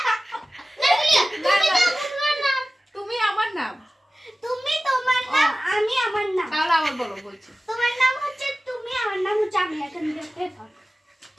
তুমি আমার নাম। তুমি তোমার নাম, আমি আমার নাম। তাহলে আবার বলো, বলছি। তোমার নাম হচ্ছে তুমি, আমার নাম হচ্ছে আমি। এখান থেকে কে পাগল?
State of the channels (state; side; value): normal; both; correlation 0.96